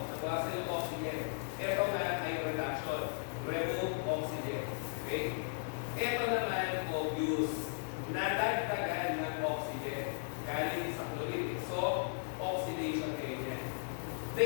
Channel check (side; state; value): right; silent; digital silence